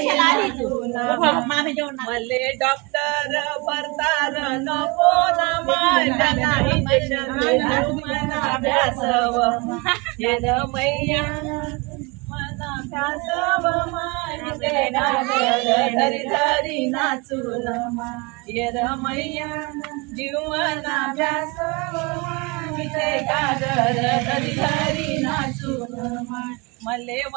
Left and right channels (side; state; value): left; quieter; 27.9 dB